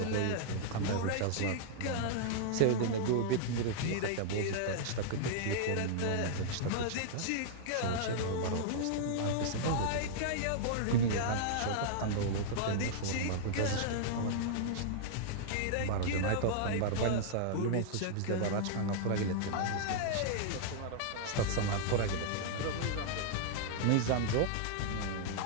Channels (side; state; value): both; different; correlation -0.01